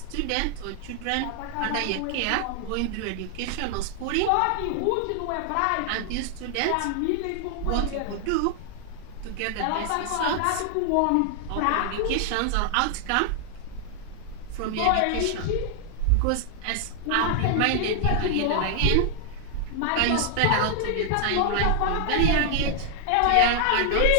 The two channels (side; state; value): both; different; correlation 0.00